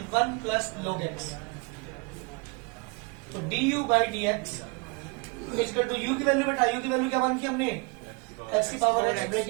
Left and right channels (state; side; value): quieter; left; 30.7 dB